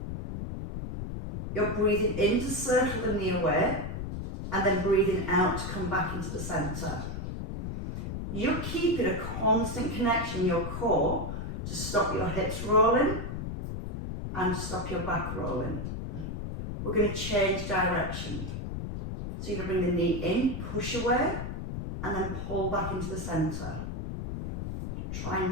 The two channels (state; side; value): noise; left; rumble, 5 dB below the sound